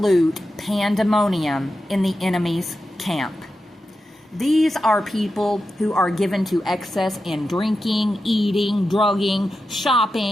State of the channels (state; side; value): normal; both; correlation 0.90